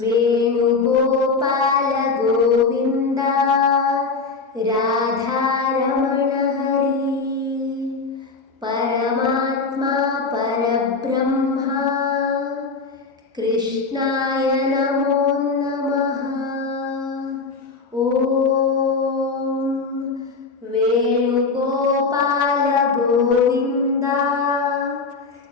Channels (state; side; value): quieter; right; 4.4 dB